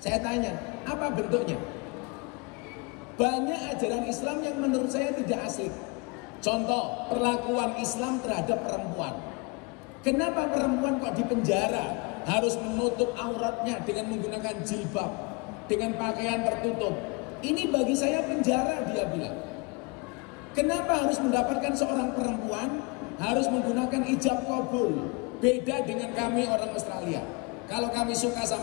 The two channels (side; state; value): right; quieter; 29.5 dB